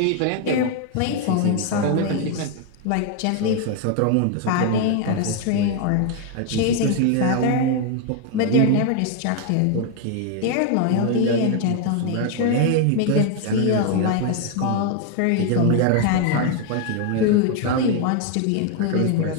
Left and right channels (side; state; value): both; different; correlation 0.01